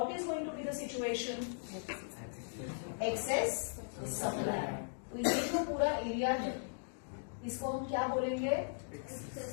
is going to be the situation? Excess supply. तो ये जो पूरा area है, इसको हम क्या बोलेंगे?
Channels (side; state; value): right; silent; digital silence